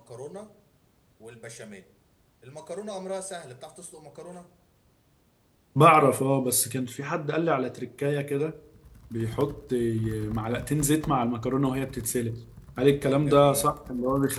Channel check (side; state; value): both; identical; correlation 1.00